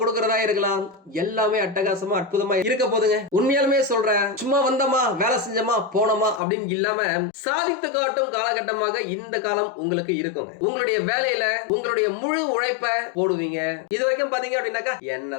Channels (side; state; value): right; drops out; at 6.4 s